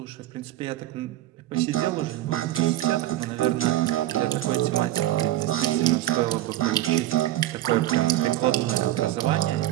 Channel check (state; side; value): quieter; left; 14.4 dB